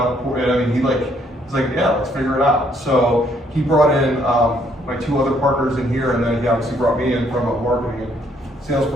I mean, he's like, "Yeah, let's figure it out." So he brought in my two other partners in here, and then he obviously brought me in from a marketing and sales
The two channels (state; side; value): normal; both; correlation 0.68